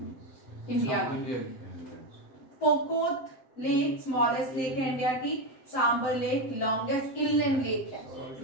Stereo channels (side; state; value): right; late; 7.7 ms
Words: इंडिया की। पोकोत लेक स्मॉलेस्ट लेक है इंडिया की। Sambhar lake longest inland lake है,